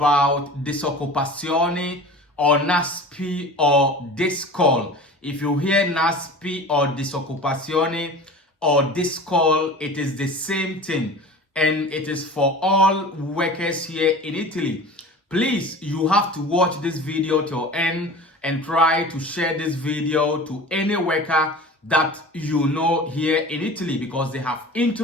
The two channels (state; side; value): normal; both; correlation 0.38